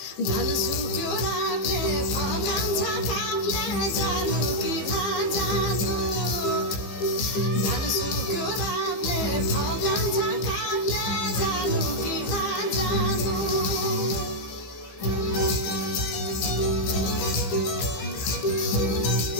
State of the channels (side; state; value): right; late; 15 ms